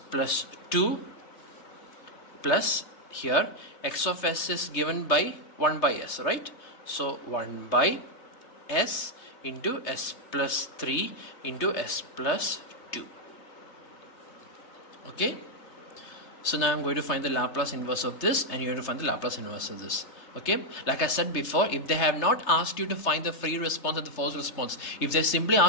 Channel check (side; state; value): right; late; 3.2 ms